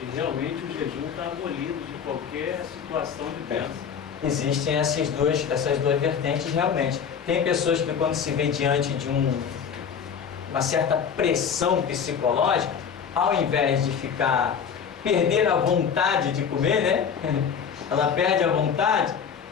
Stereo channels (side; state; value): right; quieter; 7.1 dB